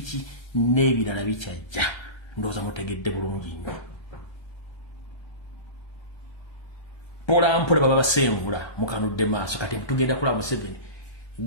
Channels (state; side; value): late; right; 1.3 ms